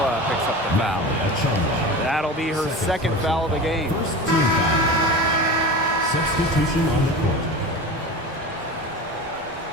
picks up the foul. That'll be her second foul of the game. First team foul. Substitution on the court.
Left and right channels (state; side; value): normal; both; correlation 0.31